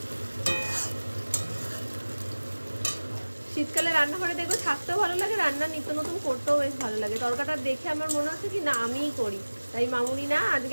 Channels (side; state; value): both; inverted; correlation -1.00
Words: শীতকালে রান্নাঘরে দেখবো থাকতেও ভালো লাগে, রান্না নিত্য নতুন করতেও বেশ ভালো লাগে। তরকাটা দেখে আমার মনে হচ্ছে কি না আমিই করি, তাই মামুনি না